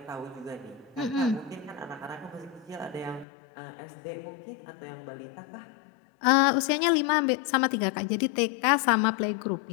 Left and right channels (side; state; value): right; drops out; at 3.2 s